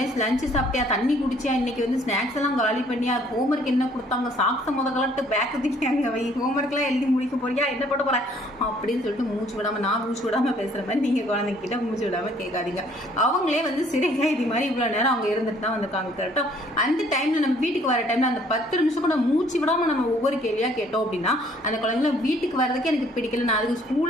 லஞ்சு சாப்பிட்டியா, தண்ணி குடிச்சியா, இன்னைக்கு வந்து ஸ்நாக்ஸ் எல்லாம் காலி பண்ணியா, ஹோம்ஒர்க் என்ன கொடுத்தாங்க, சாக்ஸ கலட்டு பேக் தூக்கியாங்க வை, ஹோம்ஒர்க் எல்லாம் எழுதி முடிக்க போறியா, என்ன பண்ண போற அப்படின்னு சொல்லிட்டு மூச்சு விடாம, நான் மூச்சு விடாம பேசுற மாதிரி நீங்க குழந்தைகிட்ட மூச்சு விடாம கேட்காதீங்க. அவங்களே வந்து சிறை கைதி மாதிரி இவ்வளவு நேரம் அவங்க இருந்துட்டு தான் வந்திருக்காங்க. கரெக்டா அந்த டைம்ல நம்ம வீட்டுக்கு வர டைம்ல அந்த 10 நிமிஷம் கூட மூச்சு விடாம நம்ம ஒவ்வொரு கேள்வியா கேட்டோம் அப்படின்னா அந்த குழந்தைங்க வீட்டுக்கு வர்றதுக்கு எனக்கு பிடிக்கல, நான் அதுக்கு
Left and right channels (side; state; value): both; normal; correlation 0.60